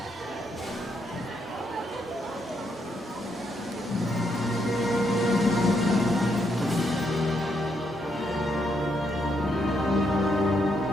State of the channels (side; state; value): both; normal; correlation 0.77